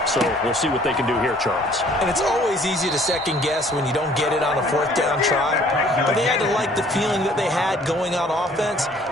So we'll see what they can do here, Charles. And it's always easy to second guess when you don't get it on a 4th down try. But they had to like the feeling that they had going on offense.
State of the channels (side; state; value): both; normal; correlation 0.57